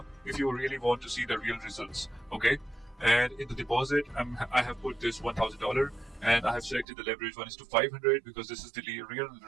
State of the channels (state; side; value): drops out; left; at 6.9 s